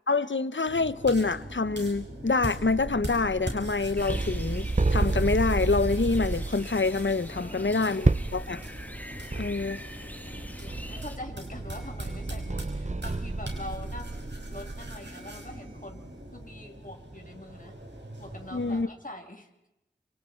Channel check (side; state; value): both; normal; correlation 0.40